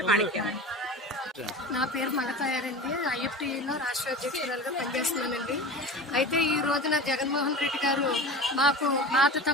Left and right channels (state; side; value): normal; both; correlation 0.33